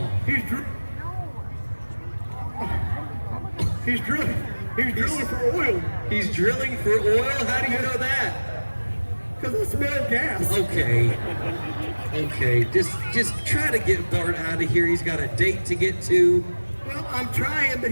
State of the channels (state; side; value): inverted; both; correlation -1.00